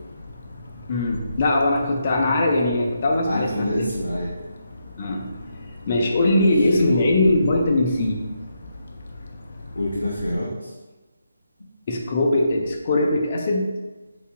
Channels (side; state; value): both; inverted; correlation -0.80